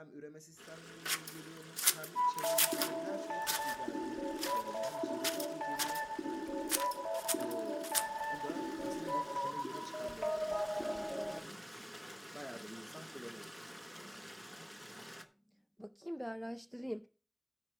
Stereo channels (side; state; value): both; identical; correlation 1.00